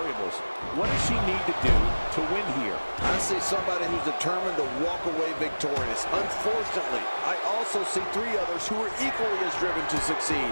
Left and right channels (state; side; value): inverted; both; correlation -1.00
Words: What does she need to do to win here? I see somebody who's determined to walk away victorious. Unfortunately, I also see three others who are equally as driven to succeed.